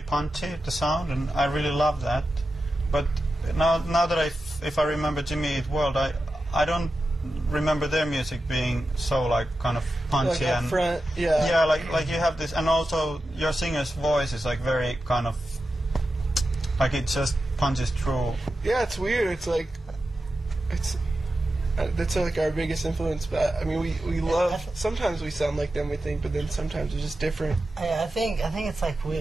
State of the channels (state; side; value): normal; both; correlation 0.91